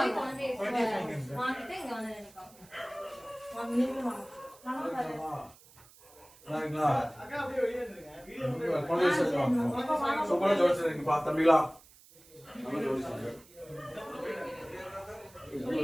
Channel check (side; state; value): right; noise; hiss, 24 dB below the sound